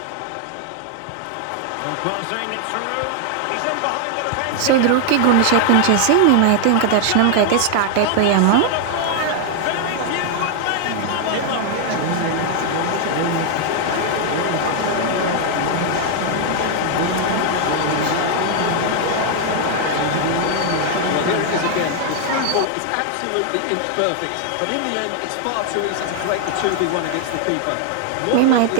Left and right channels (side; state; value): both; different; correlation 0.00